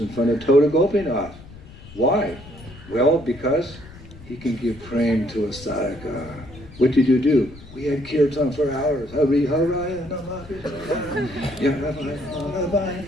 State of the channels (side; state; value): left; noise; rumble, 18 dB below the sound